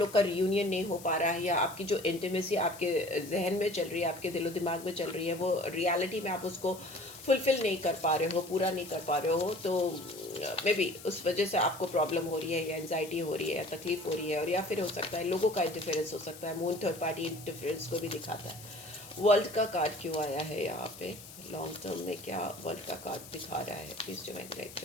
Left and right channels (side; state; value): left; noise; hiss, 16 dB below the sound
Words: का रियूनियन नहीं हो पा रहा है, या आपकी जो इंटीमेसी आपके जहन में चल रही है, आपके दिलो दिमाग में चल रही है, वो रियलिटी में आप उसको फुलफिल नहीं कर पा रहे हो, पूरा नहीं कर पा रहे हो। तो मे बी उस वजह से आपको प्रॉब्लम हो रही है या एनजाइटी हो रही है या तकलीफ हो रही है, और या फिर हो सकता है लोगों का इंटरफेरेंस हो सकता है। मून थर्ड पार्टी इंटरफेरेंस को भी दिखाता है। वर्ल्ड का कार्ड क्यों आया है यहाँ पे? लॉन्ग टर्म में क्या वर्ल्ड का कार्ड दिखा रहा है? प्लीज डिवाइन गाइड